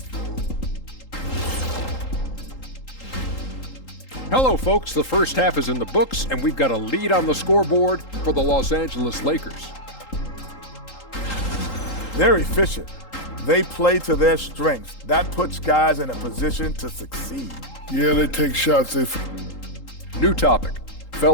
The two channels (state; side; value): late; right; 3.8 ms